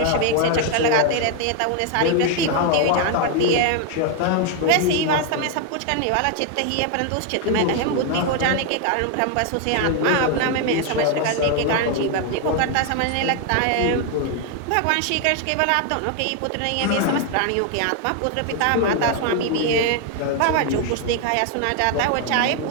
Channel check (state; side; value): different; both; correlation 0.01